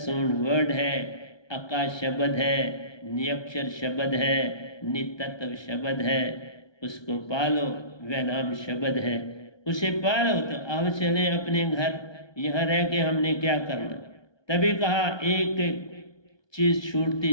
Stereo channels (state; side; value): late; right; 1.2 ms